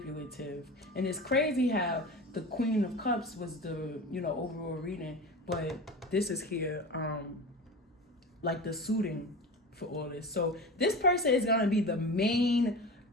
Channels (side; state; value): both; normal; correlation 0.31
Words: And it's crazy how the Queen of Cups was the, overall reading, but this is here, like the suiting for all this. So this person is gonna be the main